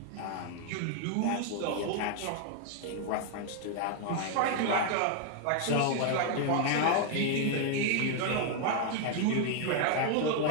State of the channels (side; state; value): both; different; correlation 0.00